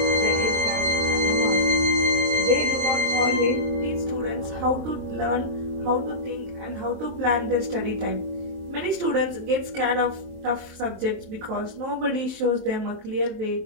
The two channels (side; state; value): left; late; 23 ms